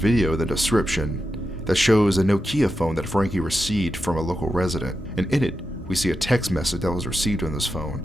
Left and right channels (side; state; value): both; normal; correlation 0.89